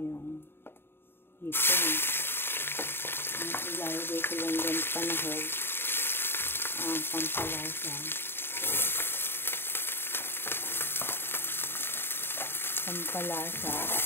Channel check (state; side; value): late; right; 0.11 ms